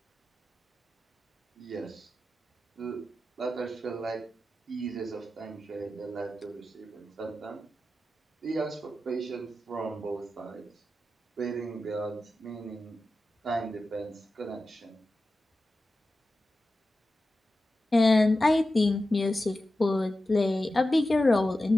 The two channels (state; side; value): normal; both; correlation 0.93